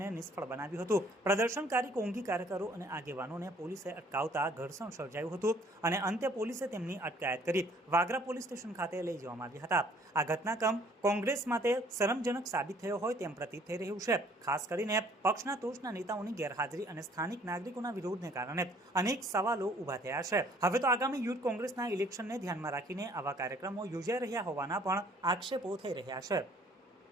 નિષ્ફળ બનાવ્યું હતું। પ્રદર્શનકારી કોંગી કાર્યકરો અને આગેવાનોને પોલીસે અટકાવતા ઘર્ષણ સર્જાયું હતું અને અંતે પોલીસે તેમની અટકાયત કરી વાગરા પોલીસ સ્ટેશન ખાતે લઈ જવામાં આવ્યા હતા। આ ઘટનાક્રમ કોંગ્રેસ માટે શરમજનક સાબિત થયો હોય તેમ પ્રતીત થઈ રહ્યું છે। ખાસ કરીને પક્ષના ટોચના નેતાઓની ગેરહાજરી અને સ્થાનિક નાગરિકોના વિરોધને કારણે અનેક સવાલો ઊભા થયા છે। હવે તો આગામી યુથ કોંગ્રેસના ઇલેક્શનને ધ્યાનમાં રાખીને આવા કાર્યક્રમો યોજાઈ રહ્યા હોવાના પણ આક્ષેપો થઈ રહ્યા છે।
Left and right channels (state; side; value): normal; both; correlation 0.59